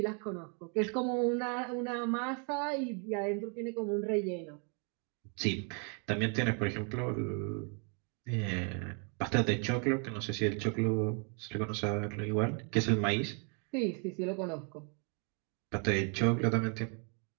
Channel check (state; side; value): quieter; left; 38.0 dB